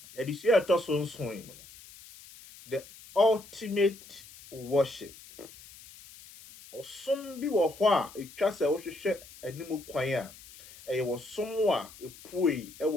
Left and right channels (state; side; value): noise; left; hiss, 19 dB below the sound